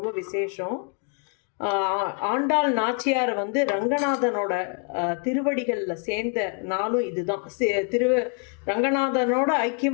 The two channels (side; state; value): right; quieter; 38.8 dB